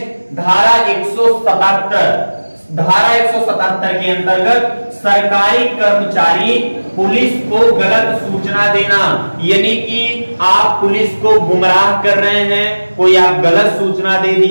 धारा 177। धारा 177 के अंतर्गत सरकारी कर्मचारी पुलिस को गलत सूचना देना, यानी कि आप पुलिस को गुमराह कर रहे हैं, कोई आप गलत सूचना दे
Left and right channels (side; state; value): both; inverted; correlation -1.00